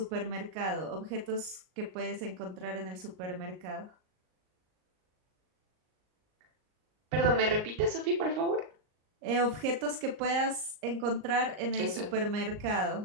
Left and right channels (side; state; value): left; late; 38 ms